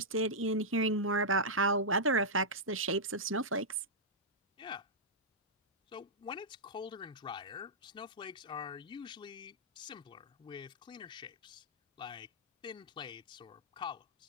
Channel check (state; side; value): normal; both; correlation -0.10